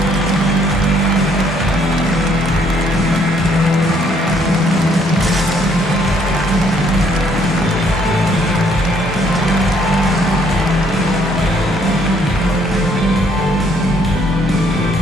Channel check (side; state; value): both; normal; correlation 0.66